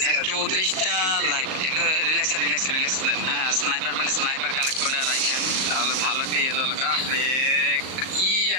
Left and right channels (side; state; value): left; late; 38 ms